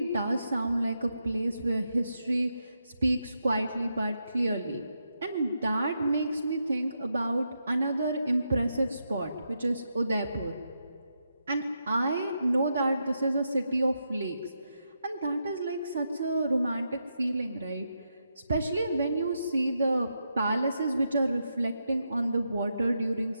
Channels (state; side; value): inverted; both; correlation -0.84